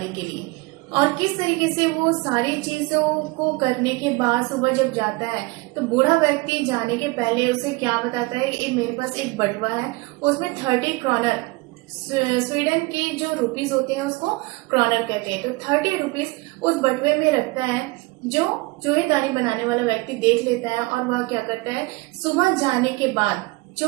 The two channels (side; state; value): left; quieter; 23.9 dB